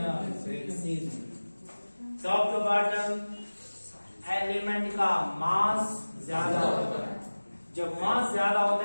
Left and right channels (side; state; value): both; inverted; correlation -1.00